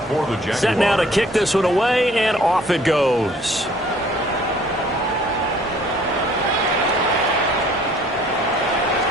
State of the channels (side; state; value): both; normal; correlation 0.56